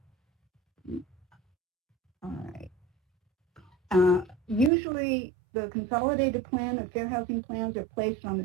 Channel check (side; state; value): left; drops out; at 4.7 s